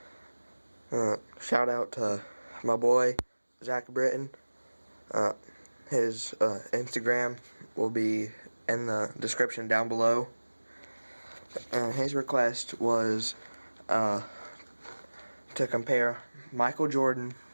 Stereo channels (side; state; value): both; inverted; correlation -1.00